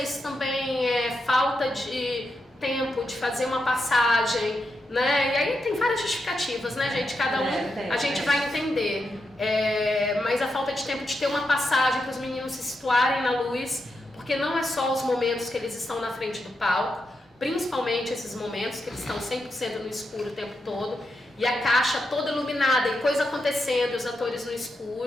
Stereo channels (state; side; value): normal; both; correlation 0.86